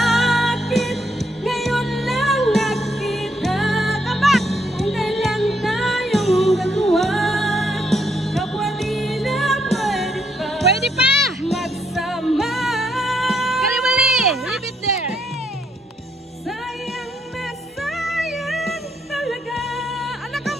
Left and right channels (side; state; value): both; normal; correlation 0.75